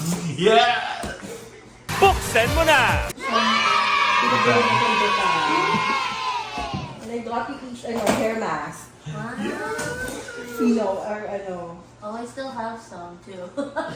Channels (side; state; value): both; identical; correlation 1.00